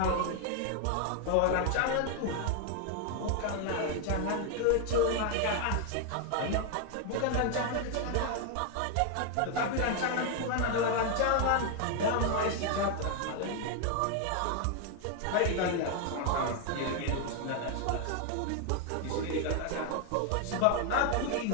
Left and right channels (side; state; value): both; different; correlation 0.01